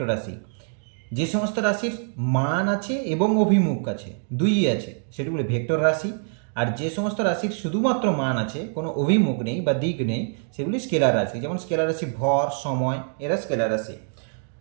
রাশি। যে সমস্ত রাশির মান আছে এবং অভিমুখ আছে, দুইই আছে, সেগুলি ভেক্টর রাশি। আর যে সমস্ত রাশির শুধুমাত্র মান আছে, কোনো অভিমুখ নেই বা দিক নেই, সেগুলি স্কেলার রাশি। যেমন স্কেলার রাশি ভর, সময়, এরা স্কেলার রাশি।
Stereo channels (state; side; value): silent; left; 61 dB below the other